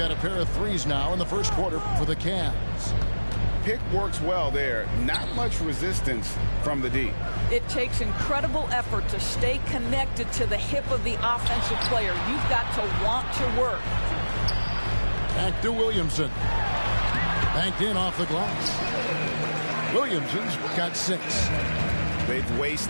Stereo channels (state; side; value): inverted; both; correlation -1.00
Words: a pair of threes now in the first quarter for the Cavs. Pick works well there. Not much resistance from the D. It takes incredible effort to stay connected to the hip of the offensive player. You've got to want to work. Back to Williamson. Banked in off the glass. Williamson's got 6. They've